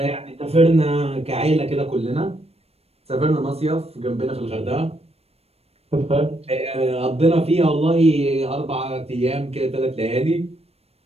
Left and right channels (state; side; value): late; left; 0.29 ms